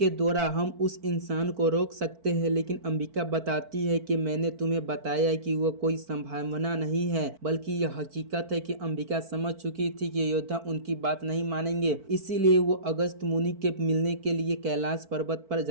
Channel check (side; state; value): left; late; 4.5 ms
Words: द्वारा हम उस इंसान को रोक सकते हैं। लेकिन अंबिका बताती है कि मैंने तुम्हें बताया कि वो कोई संभावना नहीं है बल्कि यह हकीकत है कि अंबिका समझ चुकी थी कि योद्धा उनकी बात नहीं मानेंगे। इसीलिए वो अगस्त मुनि के मिलने के लिए कैलाश पर्वत पर